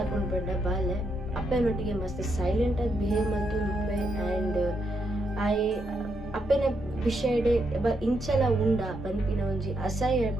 ಪಂಡ ಬಾಲೆ ಅಪ್ಪನೊಟ್ಟಿಗೆ ಮಸ್ತ್ ಸೈಲೆಂಟ್ ಆಗಿ ಬಿಹೇವ್ ಮಾಡ್ತುಂಡುಪ್ಪೆ ಆ್ಯಂಡ್ ಆಯೆ ಅಪ್ಪನ ವಿಷಯಡೆ ಇಂಚಲ ಉಂಡ ಪನ್ಪಿನ ಒಂಜಿ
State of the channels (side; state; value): both; normal; correlation 0.80